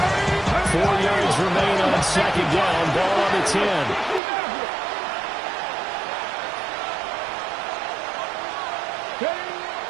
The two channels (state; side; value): drops out; left; at 4.2 s